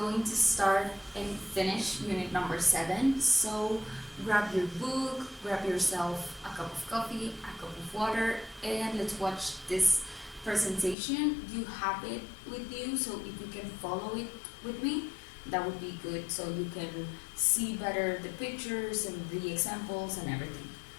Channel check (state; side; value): drops out; right; at 11.0 s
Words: to start and finish unit number 7. So grab your book, grab yourself a cup of coffee, a cup of water, and let's watch this presentation. You have it with you, so if you can follow it with me, that would be good, so you can see better the pictures and the examples and everything.